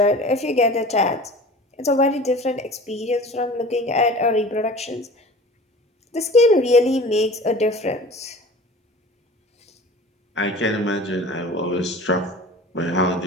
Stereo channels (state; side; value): normal; both; correlation 0.40